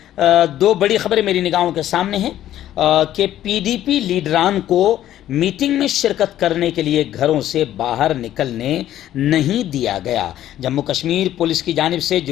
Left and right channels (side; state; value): right; quieter; 12.4 dB